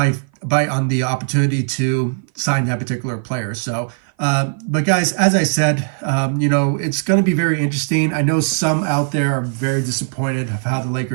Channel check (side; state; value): left; silent; 56 dB below the other